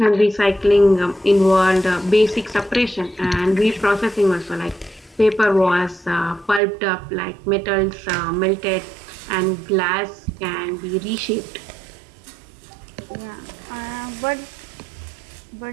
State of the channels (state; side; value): drops out; left; at 6.6 s